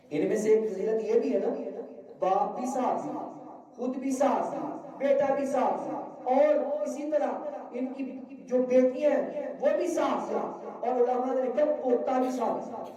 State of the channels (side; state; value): both; identical; correlation 1.00